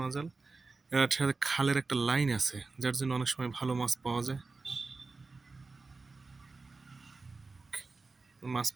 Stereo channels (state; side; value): quieter; left; 3.9 dB